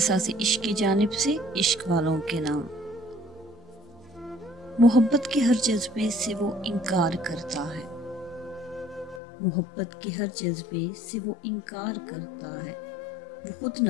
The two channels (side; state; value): right; drops out; at 9.2 s